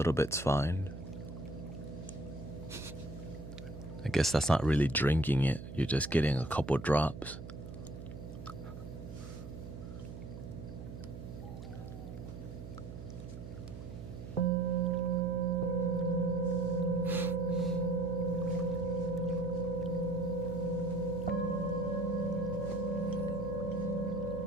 bit's fine. I guess that's not really drinking it. You're just getting a couple drops.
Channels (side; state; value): right; noise; hum, 11 dB below the sound